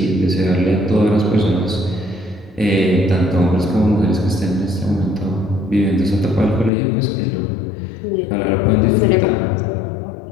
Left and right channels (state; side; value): drops out; right; at 6.7 s